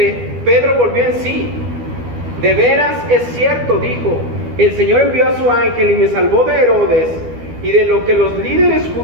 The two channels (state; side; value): late; left; 12 ms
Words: Pedro volvió en sí. De veras es cierto, dijo, el Señor envió a su ángel y me salvó de Herodes y de lo que los líderes